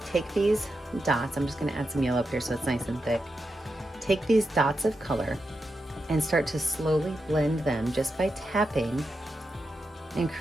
take these dots, I'm just going to add some yellow up here so it's nice and thick. Take these dots of color and start to slowly blend them just by tapping and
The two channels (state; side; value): normal; both; correlation 0.87